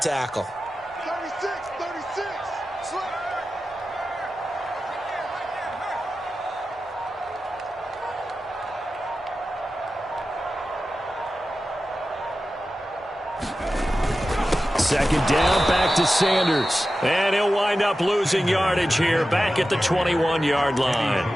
36. Second down, back to Sanders. And he'll wind up losing yardage here, back at the 21-yard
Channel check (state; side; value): normal; both; correlation 0.93